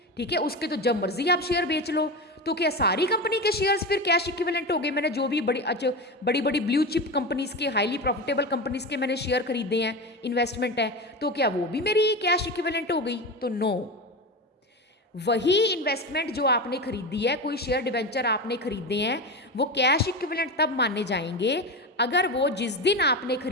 ठीक है, उसके तो जब मर्जी आप शेयर बेच लो, तो क्या सारी कंपनी के शेयर्स फिर कैश इक्विवेलेंट हो गए? मैंने जो भी बड़ी बड़ी ब्लू चिप कंपनीज के, हाईली प्रॉफिटेबल कंपनीज के मैंने शेयर खरीदे हैं, इन्वेस्टमेंट है, तो क्या वो भी मेरी कैश इक्विवेलेंट हो गई? तो नो। वही इन्वेस्टमेंट जो आपने खरीदी है, कोई शेयर डिबेंचर आपने खरीदे हैं, वो कैश इक्विवेलेंट तब माने जाएंगे अगर वो जिस दिन आपने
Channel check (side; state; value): both; normal; correlation 0.22